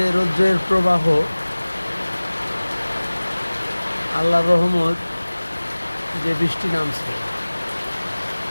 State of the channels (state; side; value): inverted; both; correlation -1.00